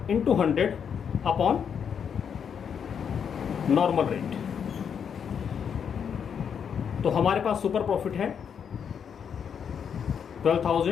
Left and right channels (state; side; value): quieter; right; 7.4 dB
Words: into 100 upon normal rate. तो हमारे पास सुपर प्रॉफिट है